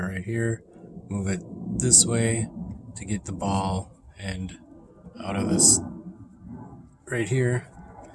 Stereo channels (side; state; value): both; identical; correlation 1.00